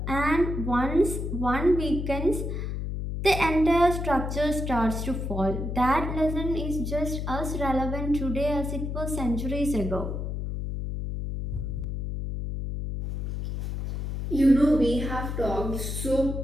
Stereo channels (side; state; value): left; noise; hum, 4 dB below the sound